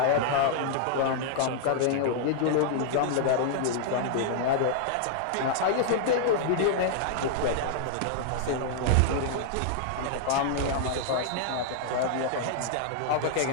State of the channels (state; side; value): different; both; correlation -0.01